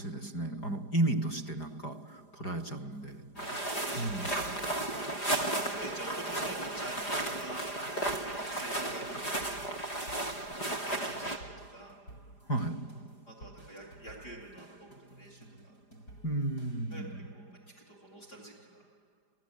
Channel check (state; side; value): late; right; 4.9 ms